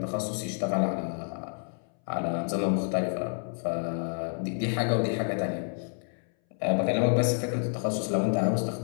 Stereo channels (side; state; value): right; silent; 59 dB below the other